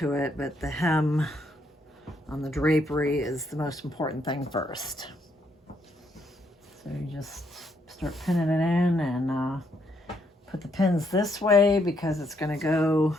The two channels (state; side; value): normal; both; correlation 0.74